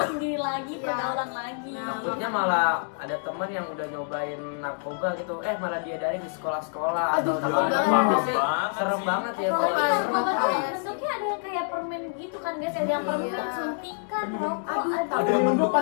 sendiri lagi, Iya. pergaulan lagi. Takutnya malah ada teman yang udah nyobain narkoba gitu, malah diadain di sekolah-sekolah Aduh, atau di takut mana banget. sih. Serem banget ya Kalau kalau narkoba tuh Kayak bentuknya ada yang kayak permen gitu kan guys, ada yang permen Iya. suntikan, rokok, Aduh, aduh. Ada yang penyelundupan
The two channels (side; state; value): right; silent; digital silence